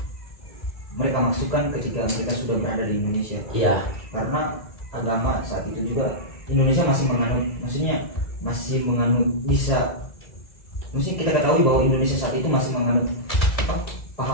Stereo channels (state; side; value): late; right; 2.0 ms